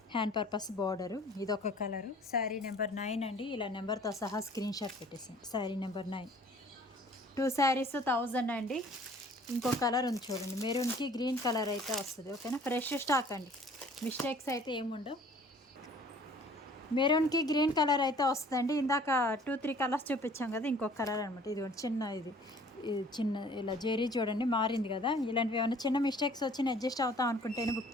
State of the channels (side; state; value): both; normal; correlation 0.52